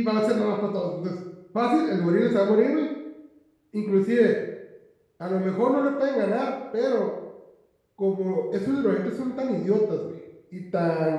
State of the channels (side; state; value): both; identical; correlation 1.00